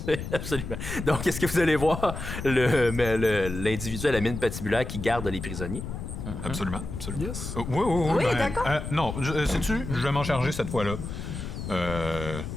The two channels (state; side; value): noise; left; rumble, 7 dB below the sound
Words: c'est absolument. Donc, est-ce que vous allez voir l'individu à la mine patibulaire qui garde les prisonniers? Absolument, absolument. Yes. Oui, Oui, d'accord. non, sais-tu, je vais m'en charger cette fois-là.